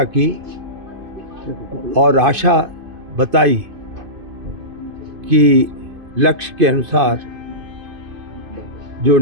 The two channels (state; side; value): late; left; 2.5 ms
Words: की और आशा बताई कि लक्ष्य के अनुसार जो